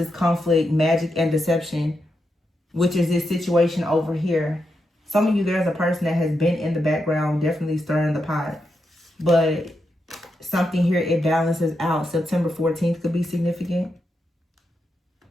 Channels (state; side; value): normal; both; correlation 0.85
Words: conflict, magic, and deception, which is this situation over here. Some of you, there's a person that has been in the background, definitely stirring the pot. But something here, it balances out. September 14th could be significant.